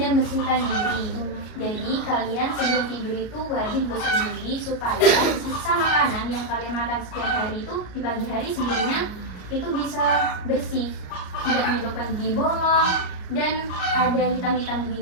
dan bersihkan diri. Jadi kalian sebelum tidur itu wajib gosok gigi supaya sisa makanan yang kalian makan setiap hari itu di pagi hari sebelumnya itu bisa bersih, tidak menyebabkan gigi bolong dan ada hitam-hitam di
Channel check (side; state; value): right; late; 33 ms